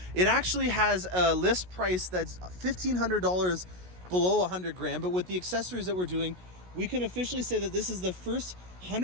It actually has a list price that's $1,500 below 100 grand, but with the accessories that we're doing, we can officially say that this is the first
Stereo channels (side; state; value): left; late; 16 ms